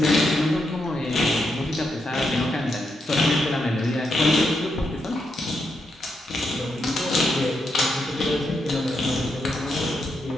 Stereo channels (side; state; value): both; normal; correlation 0.82